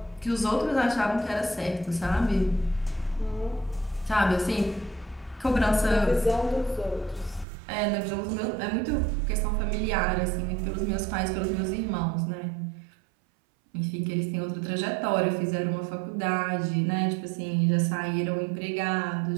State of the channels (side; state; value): left; drops out; at 7.5 s